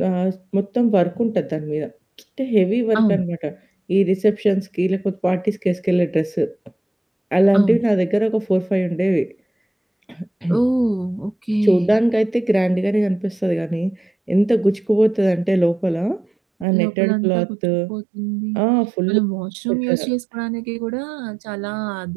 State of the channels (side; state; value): left; drops out; at 16.7 s